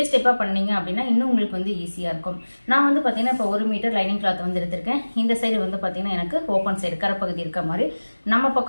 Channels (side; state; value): both; inverted; correlation -1.00